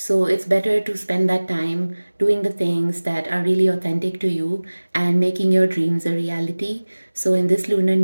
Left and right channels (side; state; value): both; inverted; correlation -1.00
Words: it's better to spend that time doing the things that are really authentic to you and making your dreams a reality. So in this Lunar